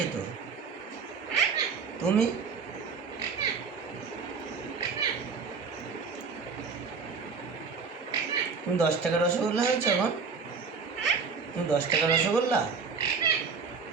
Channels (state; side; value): quieter; left; 5.2 dB